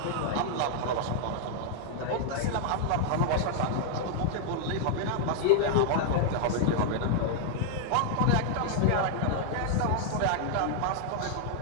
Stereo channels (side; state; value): both; different; correlation -0.01